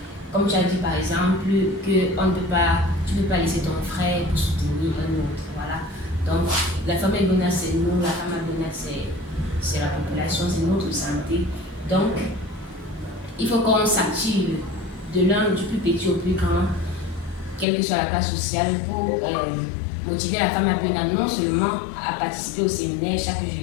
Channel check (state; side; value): drops out; right; at 17.7 s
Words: comme tu as dit par exemple, que tu ne peux pas laisser ton frère pour soutenir un autre. Voilà. Donc, la Pharma Bionat c'est nous, la Pharma Bionat c'est la population, c'est notre santé. Donc, il faut qu'on s'active de l'un du plus petit au plus grand, quelle que soit la classe sociale, pour motiver la Pharma Bionat non seulement à participer au séminaire chaque